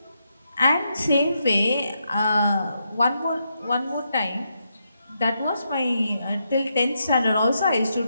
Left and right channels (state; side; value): inverted; both; correlation -0.82